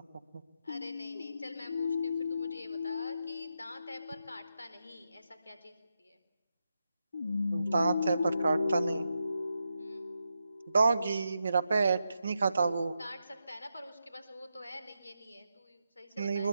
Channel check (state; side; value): inverted; both; correlation -0.86